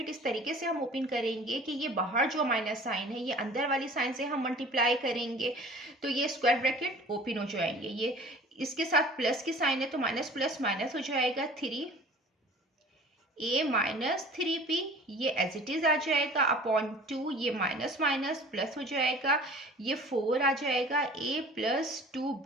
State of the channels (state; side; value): normal; both; correlation 0.45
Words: इस तरीके से हम ओपन करेंगे कि ये बाहर जो माइनस साइन है ये अंदर वाली साइन से हम मल्टीप्लाई करेंगे, तो ये स्क्वायर ब्रैकेट ओपन हो जाएंगे। ये इसके साथ प्लस की साइन है तो माइनस प्लस माइनस हो जाएगा, 3a माइनस 3p ये एज इट इज आ जाएगा अपॉन 2, ये माइनस माइनस प्लस हो जाएगा, ये 4 आ जाएगा, a प्लस